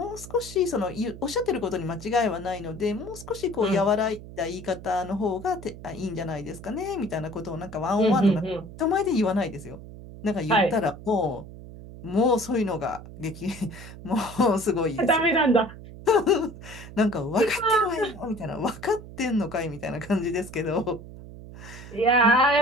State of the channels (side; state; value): right; noise; hum, 15 dB below the sound